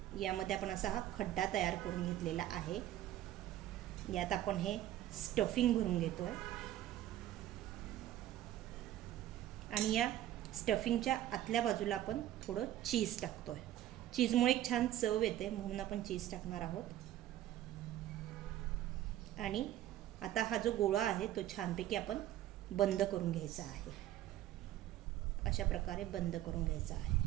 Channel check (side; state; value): left; quieter; 13.2 dB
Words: यामध्ये आपण असा हा खड्डा तयार करून घेतलेला आहे. यात आपण हे स्टफिंग भरून घेतोय आणि या स्टफिंगच्या आतल्या बाजूला आपण थोडं चीज टाकतोय. चीजमुळे एक छान चव येते म्हणून आपण चीज टाकणार आहोत. आणि आता हा जो गोळा आहे तो छानपैकी आपण बंद करून घ्यायचा आहे. अशा प्रकारे बंद करून घ्यायचा